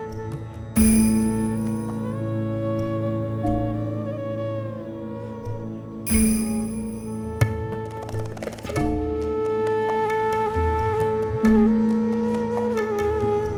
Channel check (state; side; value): identical; both; correlation 1.00